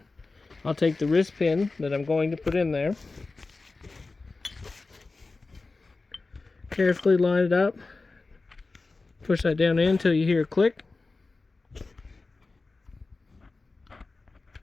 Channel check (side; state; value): right; quieter; 3.7 dB